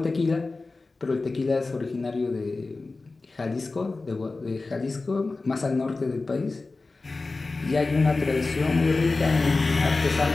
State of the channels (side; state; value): right; quieter; 3.6 dB